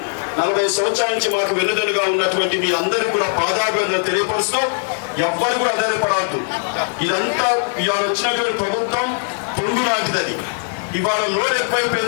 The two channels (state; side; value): silent; right; digital silence